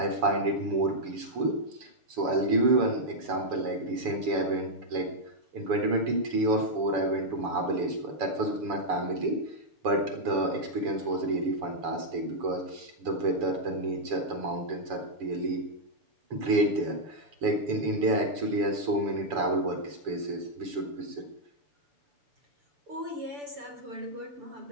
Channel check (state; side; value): late; left; 7.0 ms